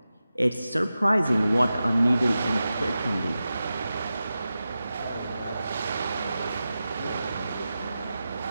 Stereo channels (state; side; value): inverted; both; correlation -0.93